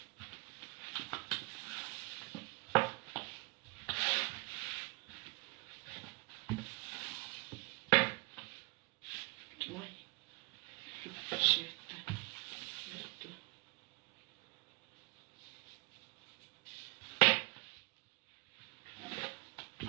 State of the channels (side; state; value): left; quieter; 27.7 dB